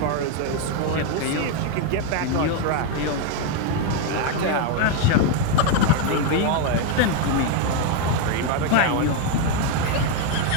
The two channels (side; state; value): both; different; correlation 0.01